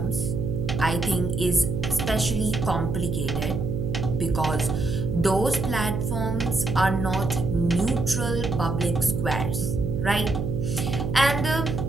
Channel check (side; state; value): right; noise; hum, 2 dB below the sound